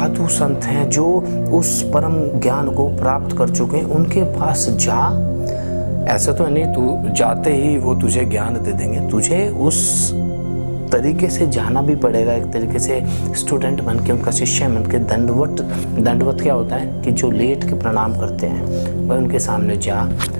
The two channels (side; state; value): both; inverted; correlation -1.00